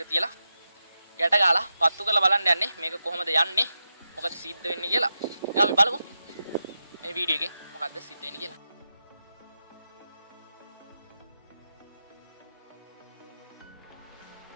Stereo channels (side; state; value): both; inverted; correlation -0.90